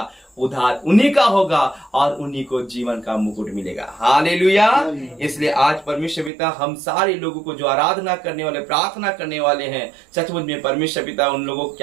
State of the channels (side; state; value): left; drops out; at 6.3 s